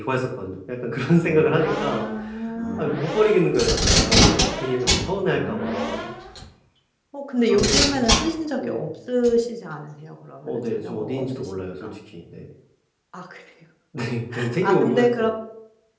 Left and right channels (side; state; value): both; identical; correlation 1.00